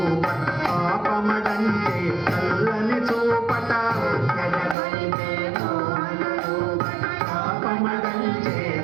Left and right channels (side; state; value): left; drops out; at 4.8 s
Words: పాపమడంటే చల్లని చూపట పాపమడంటే